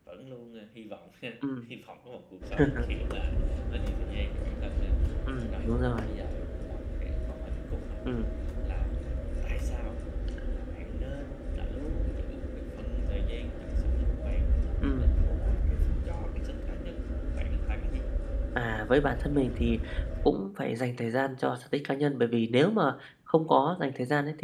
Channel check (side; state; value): both; identical; correlation 1.00